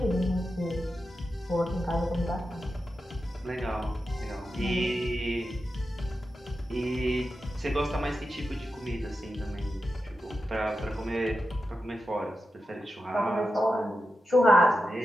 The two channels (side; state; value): both; normal; correlation 0.90